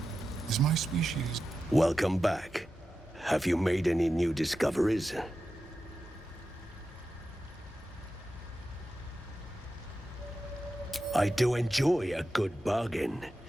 Is my species... Welcome back. Have you made any new discoveries? I do enjoy a good bargain,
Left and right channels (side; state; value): both; normal; correlation 0.91